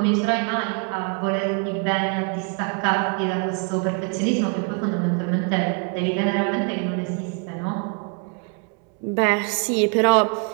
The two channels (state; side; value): quieter; left; 37.0 dB